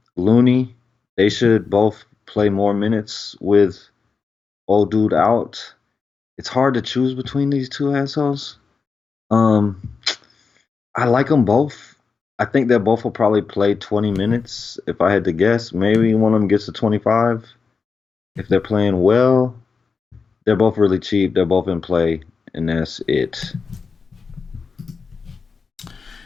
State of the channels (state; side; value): quieter; right; 5.1 dB